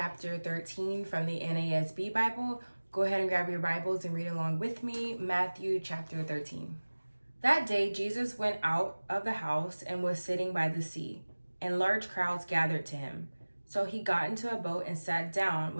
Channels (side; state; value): both; inverted; correlation -1.00